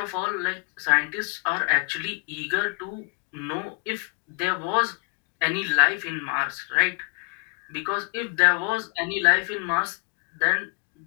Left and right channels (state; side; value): quieter; right; 35.7 dB